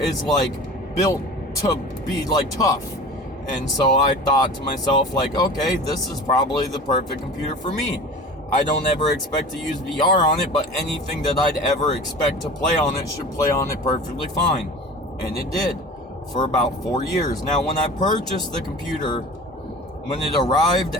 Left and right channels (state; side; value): normal; both; correlation 0.37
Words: like built to be like tough. And so I thought to myself, like, okay, this is probably the perfect computer for me. I don't ever expect to use VR on it, but anything that I'd ever expect to play on it should play on it perfectly fine. And it did for about 4 years. Now, when I purchased the computer, when it arrived